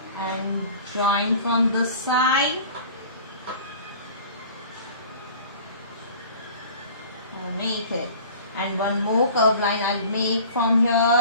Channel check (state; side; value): inverted; both; correlation -0.44